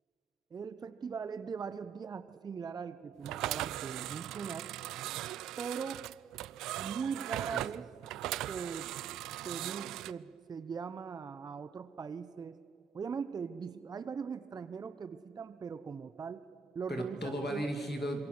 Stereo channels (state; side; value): quieter; left; 6.1 dB